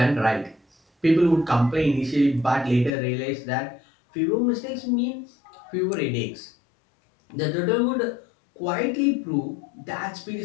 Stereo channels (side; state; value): right; drops out; at 2.9 s